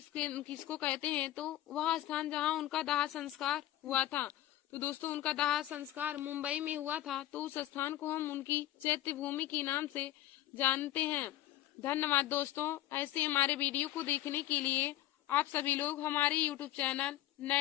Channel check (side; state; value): right; quieter; 14.1 dB